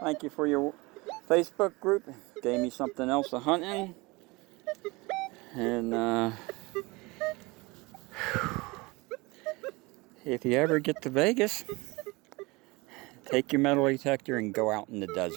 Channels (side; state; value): left; quieter; 24.3 dB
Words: for your Facebook group. Gave me something else to hunt in. And if you ever get to Vegas, take your metal detector and go out in the